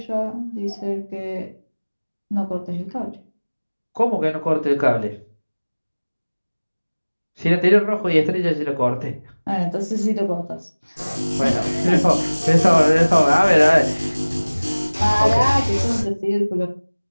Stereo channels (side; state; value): both; inverted; correlation -1.00